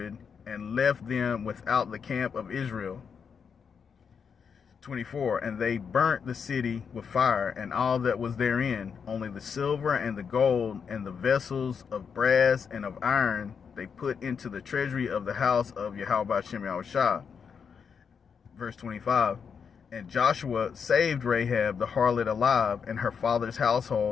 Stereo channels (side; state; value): right; quieter; 6.5 dB